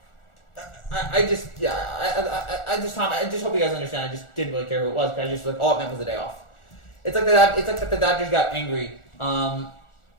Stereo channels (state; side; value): late; right; 1.4 ms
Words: I just hope you guys understand. I just didn't really care who it was because I just all it meant was a day off. It's like that the Dodgers got angry.